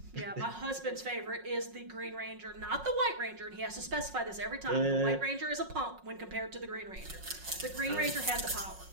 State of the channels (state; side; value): late; left; 5.5 ms